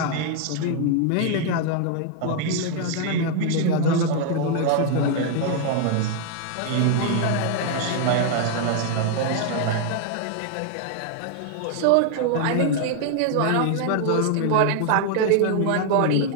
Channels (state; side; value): different; both; correlation 0.00